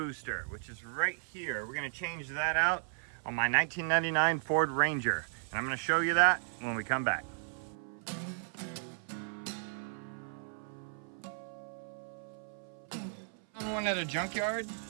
which is right here. We're going to change that out on my 1999 Ford Ranger. And I'm going to show you that when we come back. On one at a junkyard.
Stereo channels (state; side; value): silent; left; 54 dB below the other